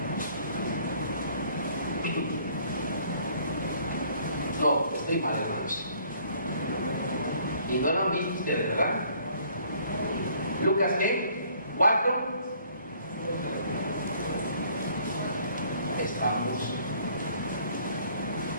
No, estoy mal, hermanos. Y no lo han visto ustedes, ¿verdad? Lucas, ¿qué? 4. Estamos.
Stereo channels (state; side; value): inverted; both; correlation -0.59